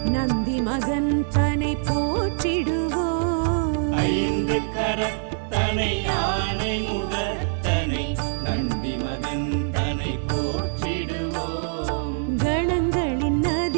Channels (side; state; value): left; silent; digital silence